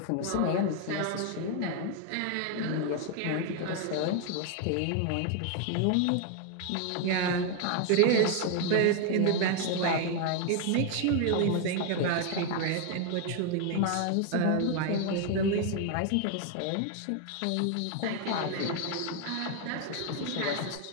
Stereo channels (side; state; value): both; different; correlation 0.01